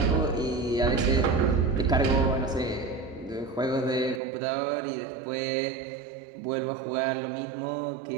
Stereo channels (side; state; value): left; drops out; at 4.2 s